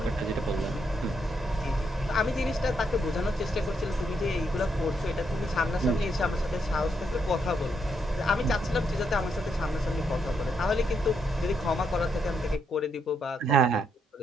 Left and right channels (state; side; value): normal; both; correlation 0.78